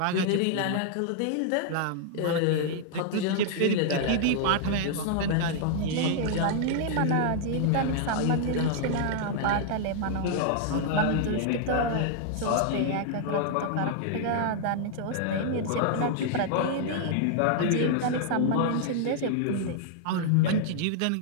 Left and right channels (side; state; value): both; different; correlation -0.01